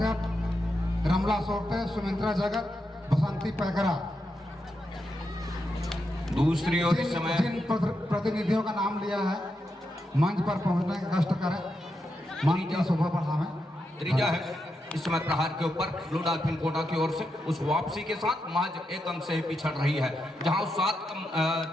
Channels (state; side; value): normal; both; correlation 0.85